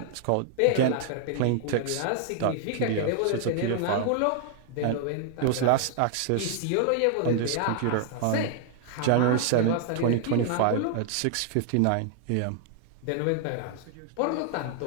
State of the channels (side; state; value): both; different; correlation 0.00